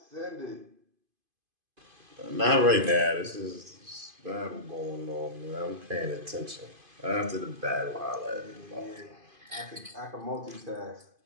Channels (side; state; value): left; late; 2.5 ms